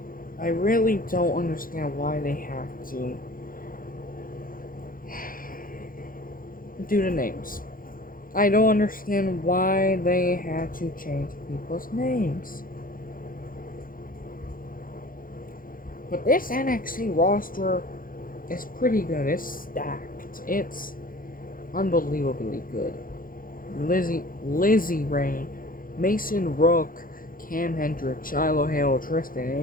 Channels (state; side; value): late; right; 0.41 ms